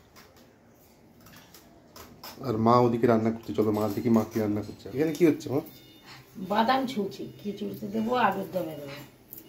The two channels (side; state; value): both; identical; correlation 1.00